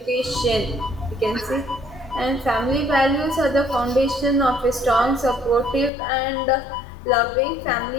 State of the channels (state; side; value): drops out; right; at 5.9 s